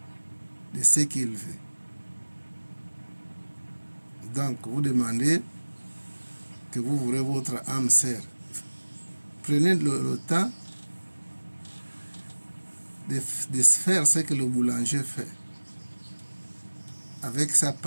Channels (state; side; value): inverted; both; correlation -1.00